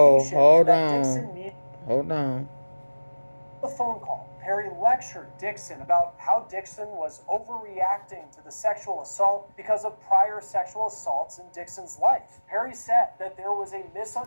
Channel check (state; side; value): inverted; both; correlation -1.00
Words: hold that on. Dixon needed. Hold on. The phone call, Perry lectured Dixon about how Dixon was overreacting to the sexual assault because of prior sexual assaults in Dixon's life. Perry said that there was a